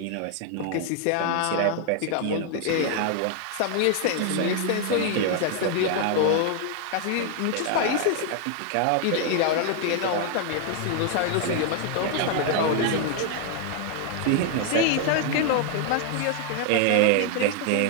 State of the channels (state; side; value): different; both; correlation 0.00